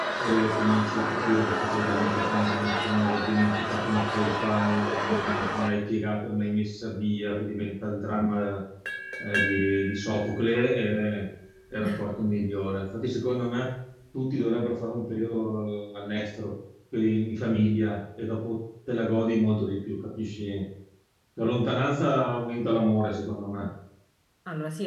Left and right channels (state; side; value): identical; both; correlation 1.00